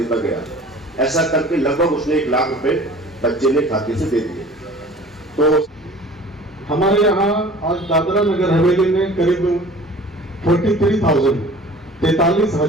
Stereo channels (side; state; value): both; normal; correlation 0.45